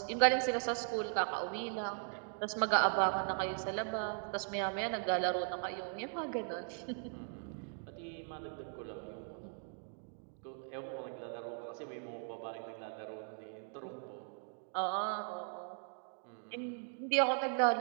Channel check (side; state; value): left; silent; 52 dB below the other